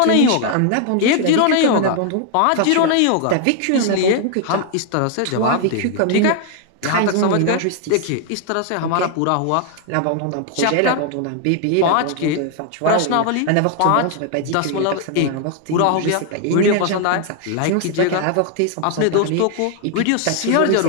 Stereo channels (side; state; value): both; different; correlation 0.00